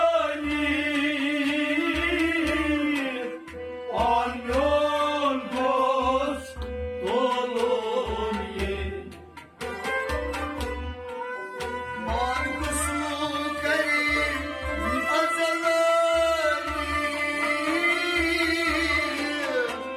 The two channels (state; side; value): identical; both; correlation 1.00